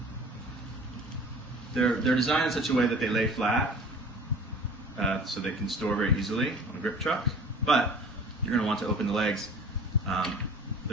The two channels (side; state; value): both; normal; correlation 0.44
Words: they're designed in such a way that they lay flat so they can store very easily on a grip truck, but you're going to want to open the legs.